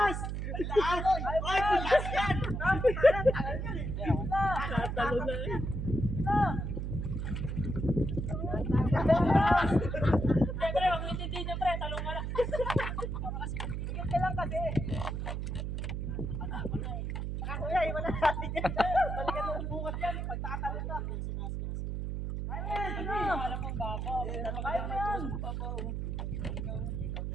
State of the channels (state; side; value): noise; right; hum, 3 dB below the sound